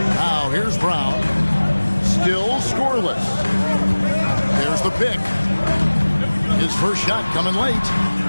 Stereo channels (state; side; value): inverted; both; correlation -1.00